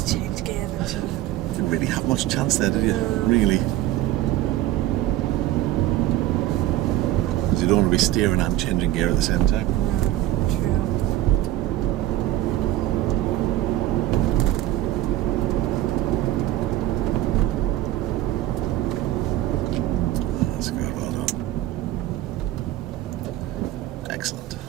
changed gear then, shouldn't I? Didn't really have much chance there, did you? Really? Because you don't want to be steering and changing gear at the same time. True. That's good, well done.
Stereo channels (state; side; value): quieter; left; 14.4 dB